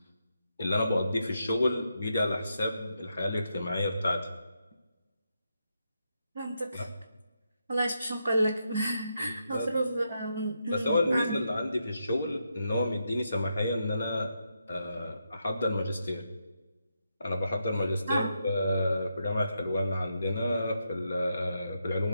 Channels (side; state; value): both; inverted; correlation -0.83